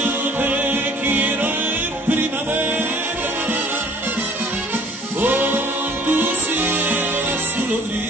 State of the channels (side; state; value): both; normal; correlation 0.54